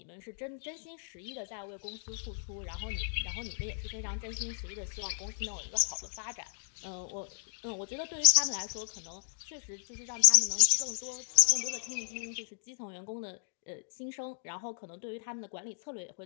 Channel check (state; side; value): silent; right; digital silence